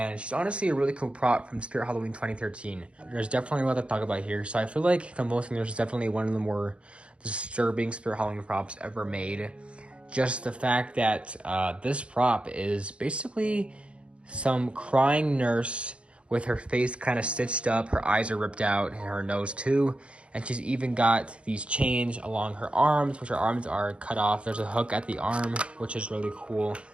she's honestly a really cool prop from Spirit Halloween 2013. There's definitely a lot to talk about here. So I feel like Convulsing nurse is definitely one of the more disturbing Spirit Halloween props ever made. Just the fact that this prop is basically some crying nurse with her face kind of stitched up, her eyes are ripped out, and her nose too. And she's even got these chains along her arms, which her arms are cut off. There's a hook at the arm, which is really cool.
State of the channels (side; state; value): left; late; 0.059 ms